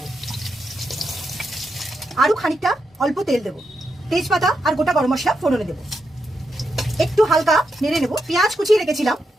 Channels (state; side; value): normal; both; correlation 0.84